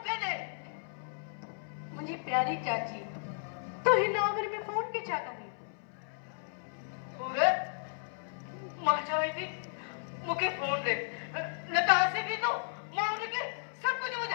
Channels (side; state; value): right; silent; 55 dB below the other